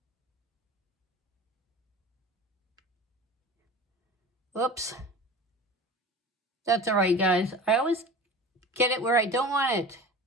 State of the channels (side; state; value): both; normal; correlation 0.36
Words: Whoops. That's all right, guys. I always get it where I don't want it.